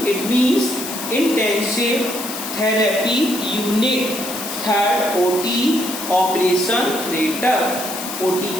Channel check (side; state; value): left; noise; hiss, 7 dB below the sound